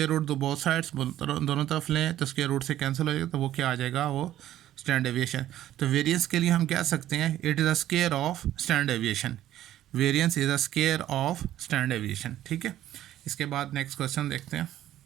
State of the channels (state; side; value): quieter; left; 12.9 dB